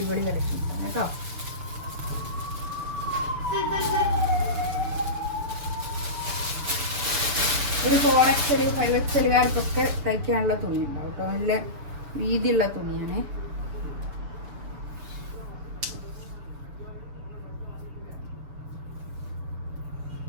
കളക്ഷൻസാണ് കേട്ടോ. ഒരു 4XL 5XLകാർക്കൊക്കെ തയ്ക്കാനുള്ള തുണി ഉണ്ടാവും കേട്ടോ. നല്ല വീതിയുള്ള തുണിയാണ്.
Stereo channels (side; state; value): left; late; 7.0 ms